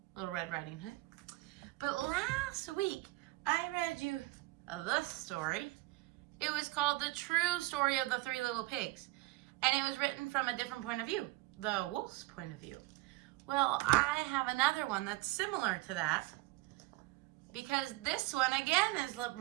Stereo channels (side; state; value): left; quieter; 20.2 dB